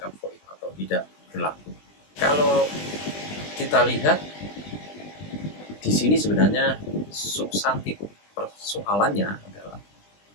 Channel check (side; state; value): right; late; 20 ms